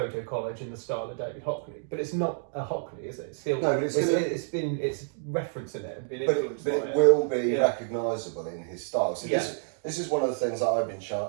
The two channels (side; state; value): left; silent; digital silence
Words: collage in the style of David Hockney, but it's not a Hockney, is it? It's still, no, but it's referencing it and been but influenced by it will be recognisable in his style. So Yeah. this is one of the things that I've been